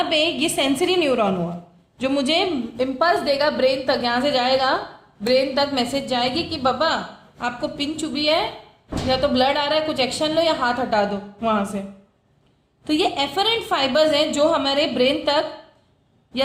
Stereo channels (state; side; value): identical; both; correlation 1.00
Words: पे ये सेंसरी न्यूरॉन हुआ जो मुझे इम्पल्स देगा ब्रेन तक. यहाँ से जाएगा ब्रेन तक, मैसेज जाएगी कि बाबा आपको पिन चुभी है, या तो ब्लड आ रहा है, कुछ एक्शन लो या हाथ हटा दो वहां से. तो ये एफरेंट फाइबर्स हैं जो हमारे ब्रेन तक